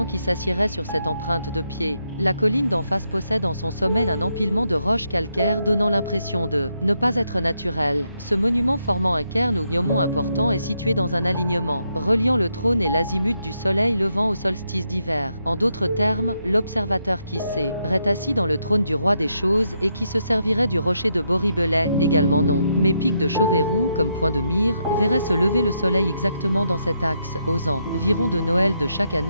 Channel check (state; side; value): inverted; both; correlation -0.80